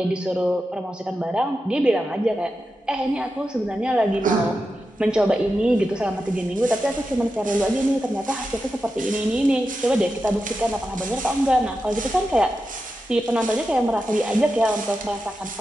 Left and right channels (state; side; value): normal; both; correlation 0.90